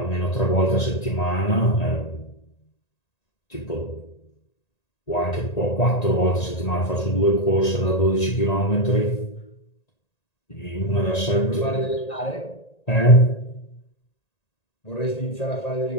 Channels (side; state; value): right; late; 1.9 ms